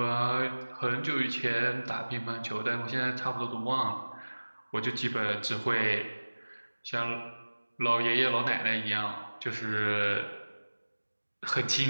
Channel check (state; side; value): inverted; both; correlation -1.00